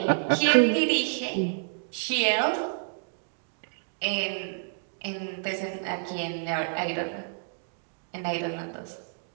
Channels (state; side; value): silent; left; digital silence